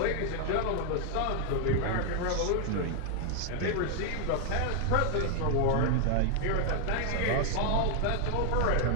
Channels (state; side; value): different; both; correlation 0.00